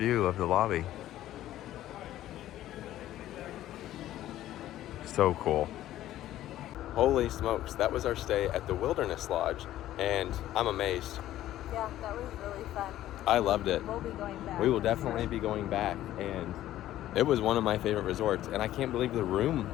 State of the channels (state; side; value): quieter; right; 13.6 dB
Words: of the lobby. So cool. Holy smokes, that was our stay at the Wilderness Lodge, and I'm amazed. Yeah, that was really fun. I loved it. We'll be going back. We will definitely be going back, and it was one of my favorite resorts, and I can't believe the room